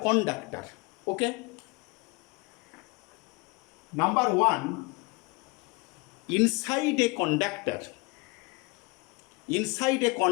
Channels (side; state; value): right; quieter; 27.7 dB